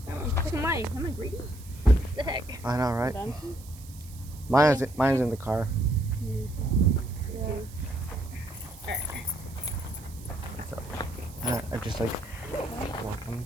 Am I greedy? What the heck? I know, right? Mine's in the car. Yeah. So, I just like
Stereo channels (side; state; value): right; noise; hiss, 20 dB below the sound